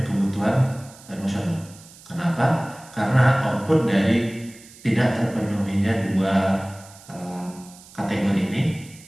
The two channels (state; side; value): noise; right; hiss, 22 dB below the sound